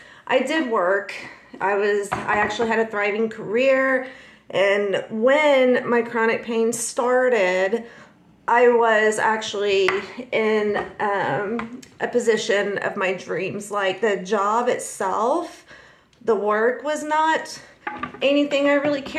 I did work. I actually had a thriving career. And when my chronic pain started, I was actually in a position of my dreams. Like the job itself, the work was not anything I really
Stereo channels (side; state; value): both; identical; correlation 1.00